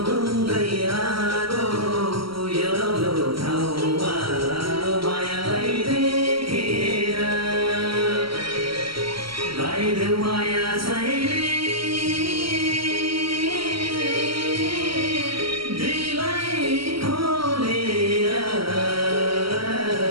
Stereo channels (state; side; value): late; left; 0.74 ms